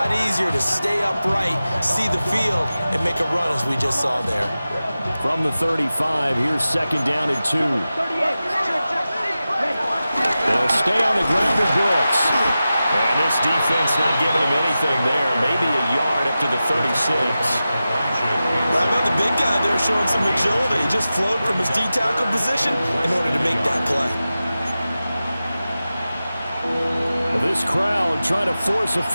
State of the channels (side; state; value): both; inverted; correlation -0.94